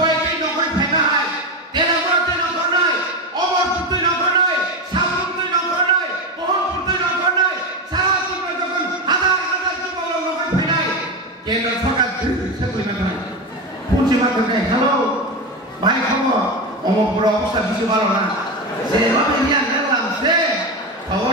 नखर फायनाय तेलाबरते नखरनाय अमरपुरते नखरनाय साबुनते नखरनाय बहनपुरते नखरनाय सारातिबो जखन हाजार जुवाल नखर फायनाय केन्द्र सरकार सेकुलिमेन्ट होनाय पन्सिमा करनाय हेलो भाई खबर अमरपुर अवस्था बिसो भालो ना जेबो बिया से खबर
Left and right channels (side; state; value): both; normal; correlation 0.17